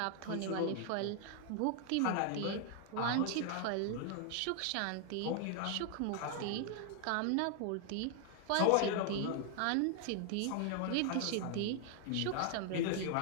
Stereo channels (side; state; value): both; different; correlation 0.00